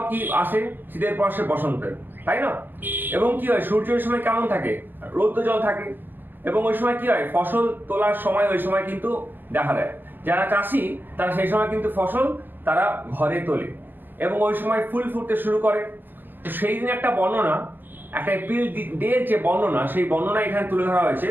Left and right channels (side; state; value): left; late; 0.094 ms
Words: কি আসে? শীতের পর সে বসন্তের, তাই না? এবং কি হয়, সূর্য ওই সময় কেমন থাকে? রৌদ্র জল থাকে। এবং ওই সময় কি হয়, ফসল তোলার সময় ওই সময় কিন্তু দেখা দেয়। যারা চাষি তারা সেই সময় কিন্তু ফসল তারা ঘরে তোলে এবং ওই সময় ফুল ফুটতে শুরু করে। তো সেই দিন একটা বর্ণনা, একটা এপ্রিল ডের যে বর্ণনা, সেই বর্ণনা এখানে তুলে ধরা হয়েছে।